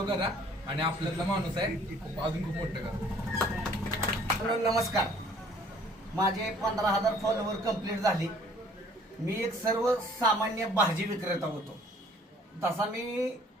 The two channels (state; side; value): normal; both; correlation 0.56